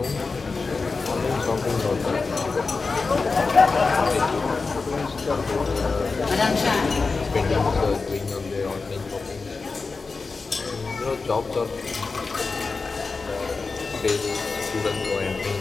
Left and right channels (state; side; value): quieter; right; 4.2 dB